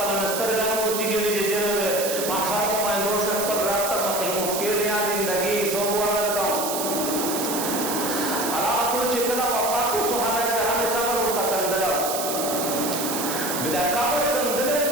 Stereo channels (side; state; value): right; noise; hiss, 3 dB below the sound